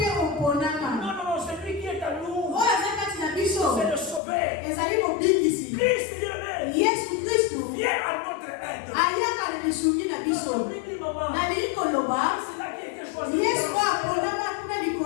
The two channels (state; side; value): drops out; right; at 4.2 s